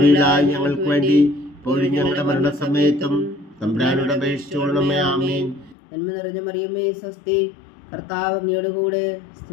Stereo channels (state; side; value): drops out; right; at 5.8 s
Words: ഞങ്ങൾക്ക് വേണ്ടി ഇപ്പോഴും ഞങ്ങളുടെ മരണസമയത്തും തമ്പുരാനോട് അപേക്ഷിച്ചോളണമേ. ആമേൻ. നന്മ നിറഞ്ഞ മറിയമേ സ്വസ്തി, കർത്താവ് അങ്ങയോട് കൂടെ